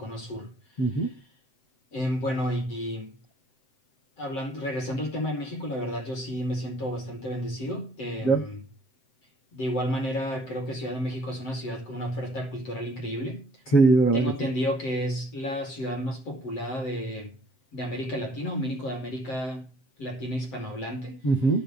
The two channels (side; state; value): right; late; 7.8 ms